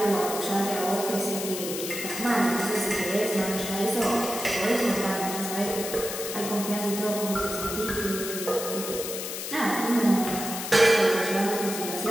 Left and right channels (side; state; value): left; noise; hiss, 6 dB below the sound